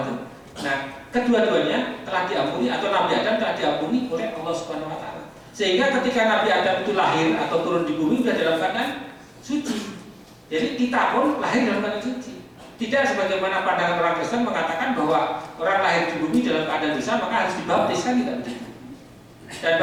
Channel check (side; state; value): both; identical; correlation 1.00